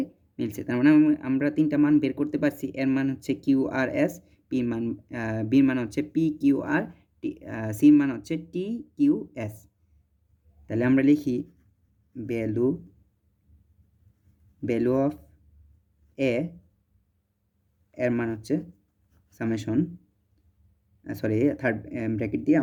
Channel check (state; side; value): identical; both; correlation 1.00